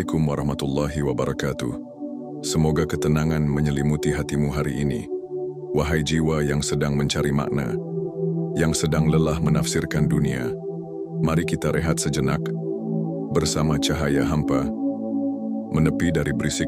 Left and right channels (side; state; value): both; identical; correlation 1.00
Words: warahmatullahi wabarakatuh. Semoga ketenangan menyelimuti hatimu hari ini. Wahai jiwa yang sedang mencari makna, yang sedang lelah menafsirkan dunia, mari kita rehat sejenak bersama cahaya hampa, menepi dari